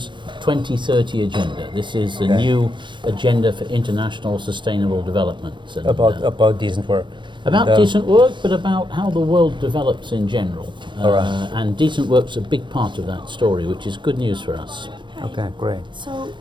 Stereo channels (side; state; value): left; late; 0.23 ms